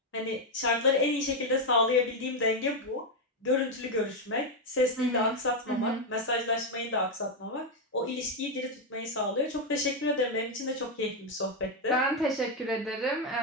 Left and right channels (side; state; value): both; normal; correlation 0.04